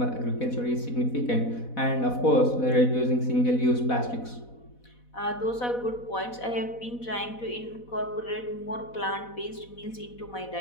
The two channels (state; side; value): late; right; 4.1 ms